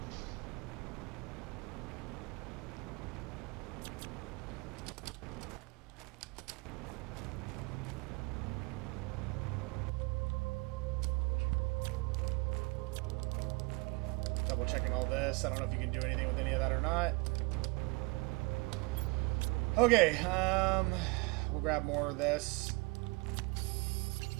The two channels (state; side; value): quieter; left; 27.7 dB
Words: Double checking all this. I don't know if you can do anything with any of that or not. Okay, we'll grab more of this.